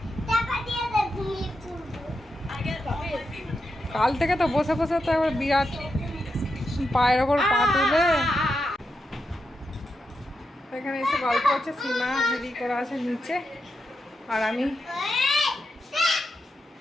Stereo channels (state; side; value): normal; both; correlation 0.86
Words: কাল থেকে তো বসে বসে তো একবার বিরাট পায়ের ওপর পা তুলে এখানে এসে গল্প হচ্ছে। সীমা রেডি করা আছে নিচে, আর আমি